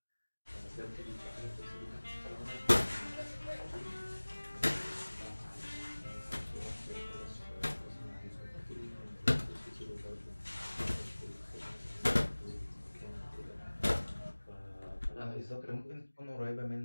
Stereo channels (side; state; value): both; inverted; correlation -1.00